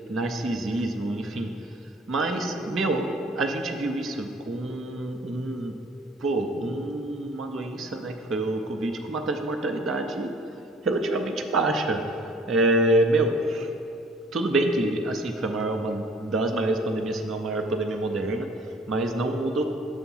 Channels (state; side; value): normal; both; correlation 0.53